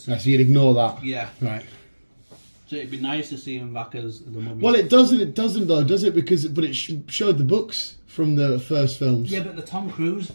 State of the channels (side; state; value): both; inverted; correlation -1.00